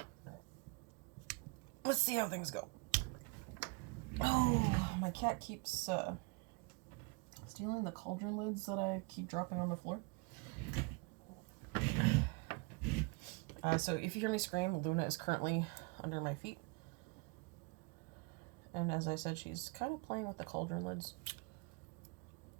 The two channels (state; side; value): quieter; left; 28.8 dB